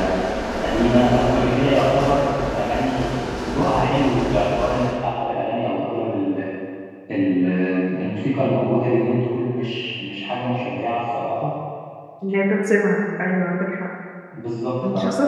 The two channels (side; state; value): both; identical; correlation 1.00